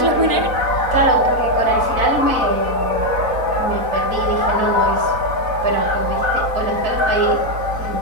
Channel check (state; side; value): late; left; 4.0 ms